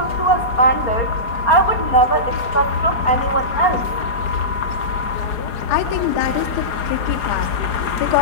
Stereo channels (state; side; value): late; right; 4.9 ms